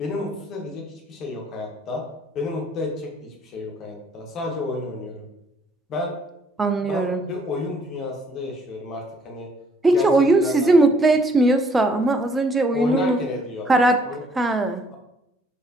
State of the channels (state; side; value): normal; both; correlation 0.64